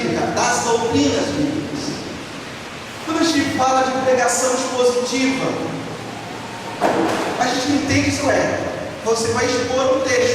das doutrinas bíblicas. Quando a gente fala de pregação expositiva, a gente entende isso você vai expor um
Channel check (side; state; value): both; identical; correlation 1.00